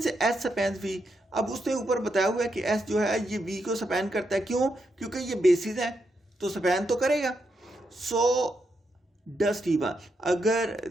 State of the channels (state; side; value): normal; both; correlation 0.82